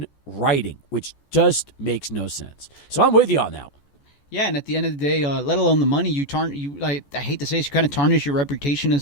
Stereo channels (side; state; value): right; late; 14 ms